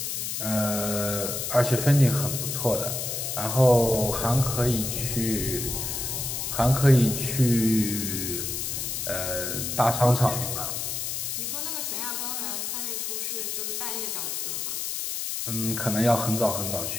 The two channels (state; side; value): noise; left; hiss, 3 dB below the sound